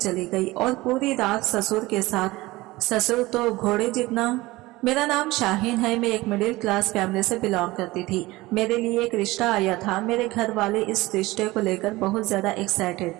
गई और पूरी रात ससुर के साथ। ससुर तो घोड़े जितना। मेरा नाम शाहीन है। मैं एक मिडिल क्लास फैमिली से बिलोंग करती थी। मेरे लिए एक रिश्ता आया था। मेरे घर वाले इस रिश्ते को लेकर बहुत ज्यादा एक्साइटेड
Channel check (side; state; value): left; quieter; 19.8 dB